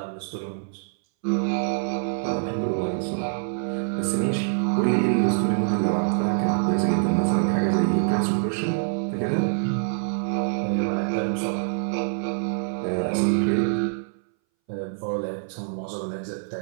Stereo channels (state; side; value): silent; left; 61 dB below the other